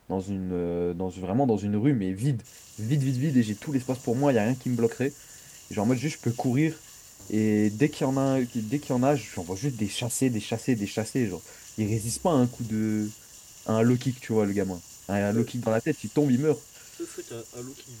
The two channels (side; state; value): both; identical; correlation 1.00